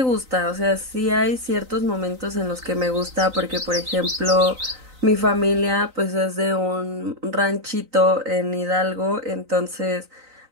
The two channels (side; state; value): left; late; 3.9 ms